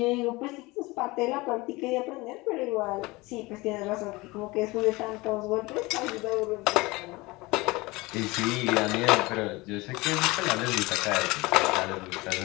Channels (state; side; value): quieter; right; 22.5 dB